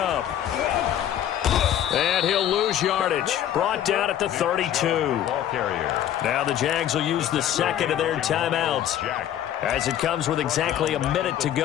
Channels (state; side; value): quieter; right; 11.0 dB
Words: And he'll lose yardage. Brought down at the 32. Now the Jags will use the second of their timeouts as it comes with exactly a minute to